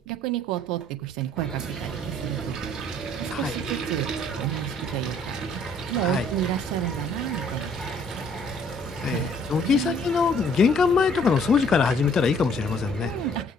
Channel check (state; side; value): normal; both; correlation 0.60